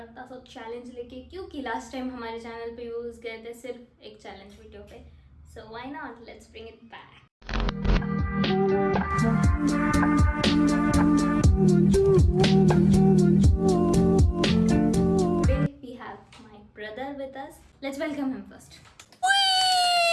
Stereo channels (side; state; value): both; identical; correlation 1.00